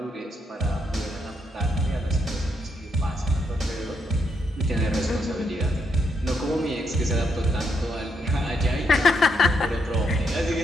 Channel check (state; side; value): normal; both; correlation 0.78